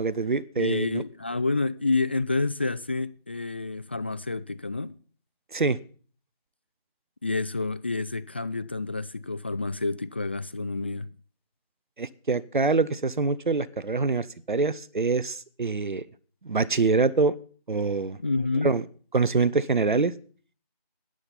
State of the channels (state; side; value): inverted; both; correlation -0.35